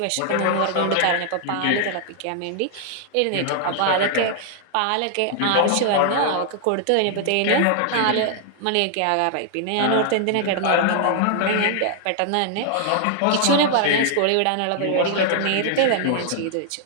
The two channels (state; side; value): different; both; correlation 0.00